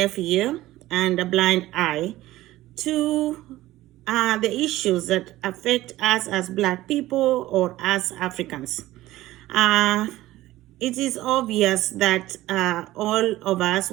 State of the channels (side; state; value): left; quieter; 16.3 dB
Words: ear and a blind eye to the issues that affect us as Black people or as Africans. It is obvious that all of us